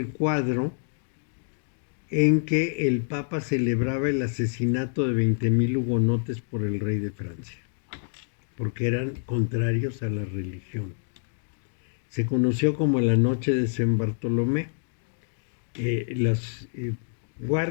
cuadro en que el Papa celebraba el asesinato de 20,000 hugonotes por el rey de Francia, porque eran contrarios a la religión. Se conoció como la noche de San Bartolomé. Los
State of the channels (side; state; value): right; silent; digital silence